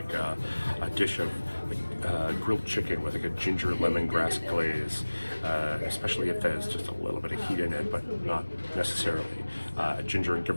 a dish of grilled chicken with like a ginger lemongrass glaze, especially if there's just a little bit of heat in it, but not necessarily. Ginger and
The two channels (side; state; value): both; inverted; correlation -1.00